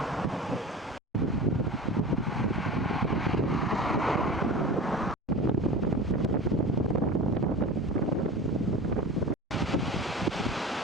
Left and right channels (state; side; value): normal; both; correlation 0.33